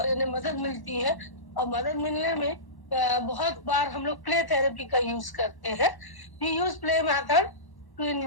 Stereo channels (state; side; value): late; right; 1.1 ms